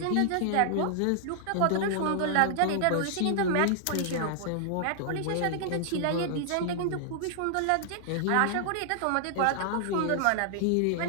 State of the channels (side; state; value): both; different; correlation -0.01